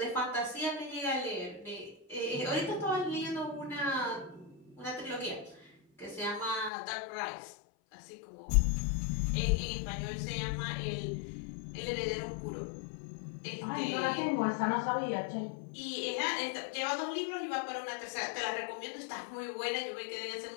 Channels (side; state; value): right; drops out; at 6.7 s